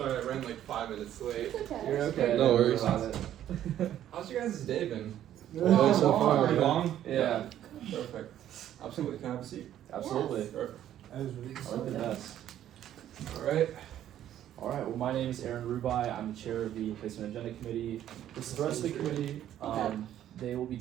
I ran like 5 minutes late. it's okay. You're okay. No worries. About it. How's your guys' day been? Oh, so far, Pretty man. long? Yeah. Perfect. Absolutely. Can I have a seat? Absolutely. Perfect. That was really I like the best. Alright. Alright, well my name is Aaron Rubai. I'm the chair of the Placement Agenda Committee. This is the rest of the committee. They will be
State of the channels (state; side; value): quieter; left; 11.5 dB